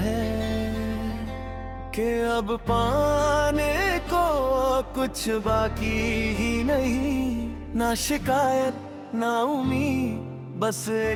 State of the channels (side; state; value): both; identical; correlation 1.00